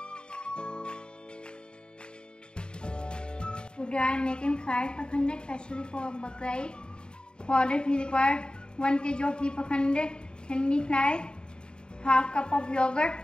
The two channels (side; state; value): right; late; 0.050 ms